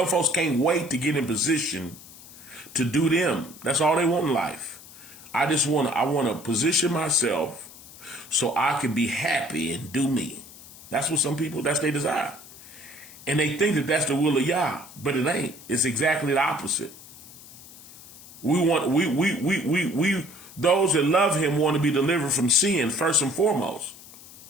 folks can't wait to get in position to do them. That's all they want in life. I want to position myself so I can be happy and do me. That's what some people, that's their desire. And they think that that's the will of Yah, but it ain't. It's exactly the opposite. We those that love him want to be delivered from sin first and foremost.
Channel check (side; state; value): left; noise; hiss, 19 dB below the sound